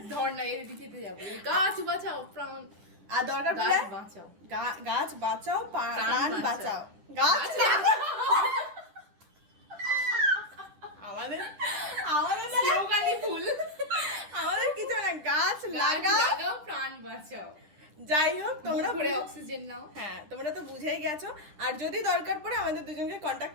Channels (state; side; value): late; left; 10 ms